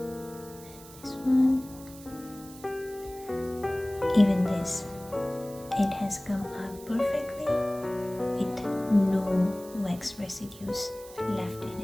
this one, even this it has come out perfectly with no wax residues left in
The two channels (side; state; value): right; noise; hiss, 19 dB below the sound